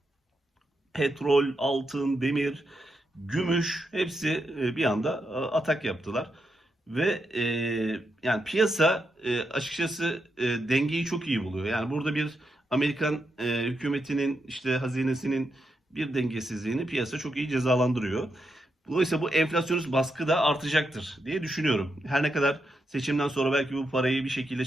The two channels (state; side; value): normal; both; correlation 0.84